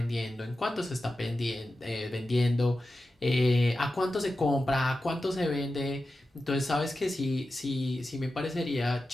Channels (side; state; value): both; normal; correlation 0.92